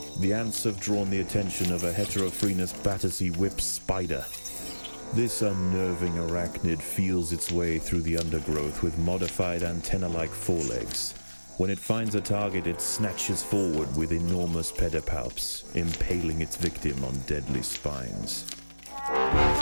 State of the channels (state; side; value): inverted; both; correlation -1.00